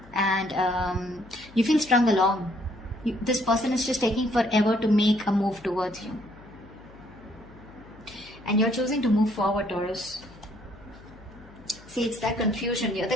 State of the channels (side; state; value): left; noise; hum, 22 dB below the sound